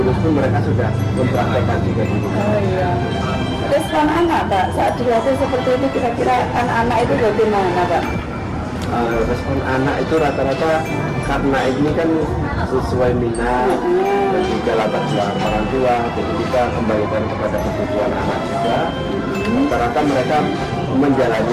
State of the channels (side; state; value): both; identical; correlation 1.00